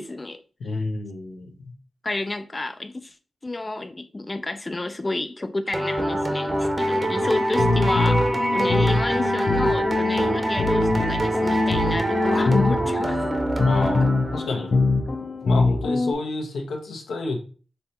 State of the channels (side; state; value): both; normal; correlation 0.92